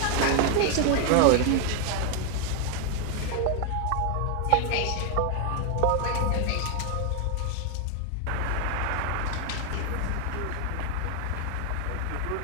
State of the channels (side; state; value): both; different; correlation 0.00